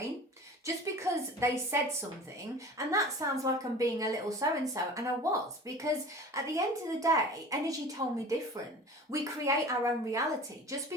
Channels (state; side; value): normal; both; correlation 0.39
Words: Just because they said something, and that sounds like I'm being a little so-and-so, and I was, because at the end of the day, energy told me different. We create our own reality. Just